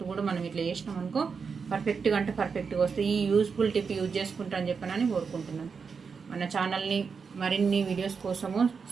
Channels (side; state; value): left; quieter; 5.6 dB